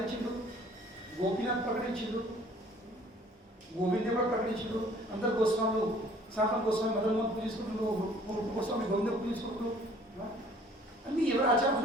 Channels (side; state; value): both; normal; correlation 0.55